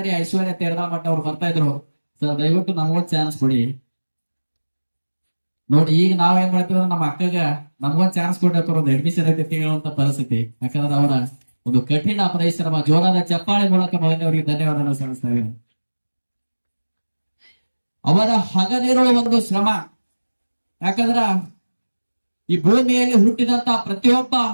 ಐಶ್ವರ್ಯ ತೇರದಾಳ್ ಮಠ ಅವ್ರು ಬರ್ತಾ ಇದ್ರು. ಸರ್ ದಯವಿಟ್ಟು ನಮಗೊಂದು ಚಾನ್ಸ್ ಕೊಡಿ. ನೋಡಿ, ಈಗ ನಾವೇನ್ ಮಾಡ್ತೀವಿ ನಮ್ಮ ಅಕ್ಕಗ ನಮಗೊಂದು ಚಾನ್ಸ್ ಕೊಟ್ಟಿರ್ತಾರ, ಒಂದು ಅಡ್ಮಿಷನ್ ಐತಿ ಹೇಳುವಂತ ಪರಿಸ್ಥಿತಿ. ಯಾಕಂದ್ರೆ ಅವರ ಒಂದು ಕಠಿಣ ಪರಿಶ್ರಮ, ಜೋರಾದ ಚಪ್ಪಾಳೆ ಮೂಲಕ ಮೊದಲನೇವರಿಗೆ ಧನ್ಯವಾದ ಸಲ್ಲಿಸ್ತಾ ಇದ್ದೀನಿ. ಅವರ ಹಗಲಿರುವ ಒಂದು ಶ್ರಮ, ಯಾಕಂದ್ರ ಈ ಭೂಮಿಯಲ್ಲಿ ಹುಟ್ಟಿದಂತಹ ಪ್ರತಿಯೊಬ್ಬ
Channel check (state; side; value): inverted; both; correlation -1.00